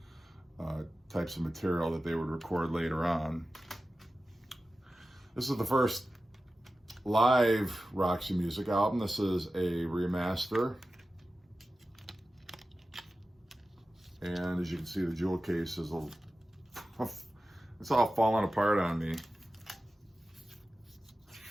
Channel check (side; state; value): both; normal; correlation 0.94